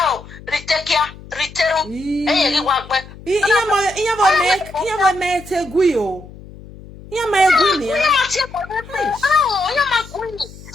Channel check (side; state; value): left; noise; hum, 18 dB below the sound